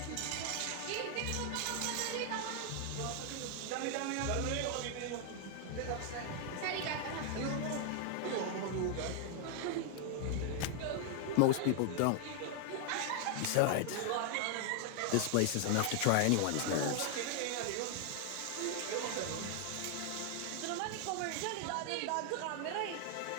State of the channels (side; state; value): both; different; correlation 0.00